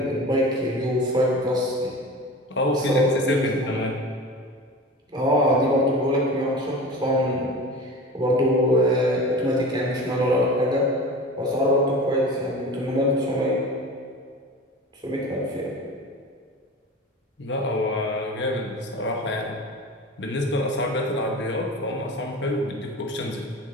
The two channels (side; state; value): both; normal; correlation 0.34